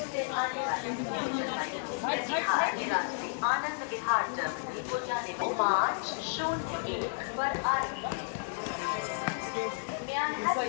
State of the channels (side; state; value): right; silent; 56 dB below the other